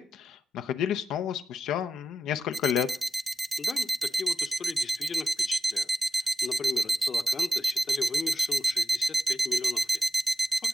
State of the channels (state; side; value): normal; both; correlation 0.89